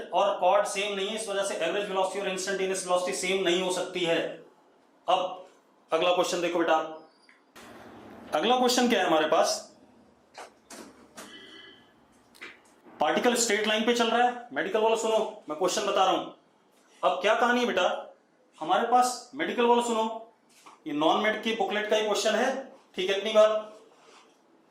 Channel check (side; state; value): both; identical; correlation 1.00